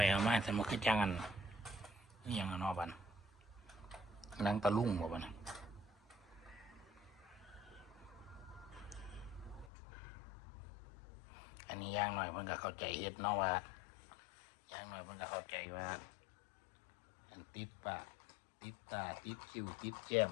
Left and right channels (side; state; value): right; drops out; at 9.7 s